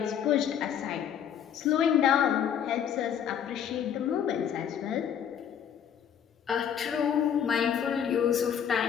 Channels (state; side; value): quieter; right; 8.8 dB